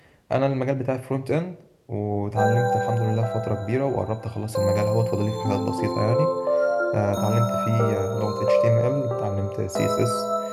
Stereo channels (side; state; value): both; identical; correlation 1.00